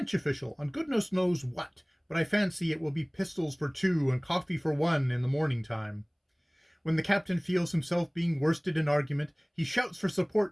official on goodness knows what, but I fancy it will be pistols for 2 and coffee for 1 in the morning time. When the captain feels himself being worsted in argument, he shouts for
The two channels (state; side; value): identical; both; correlation 1.00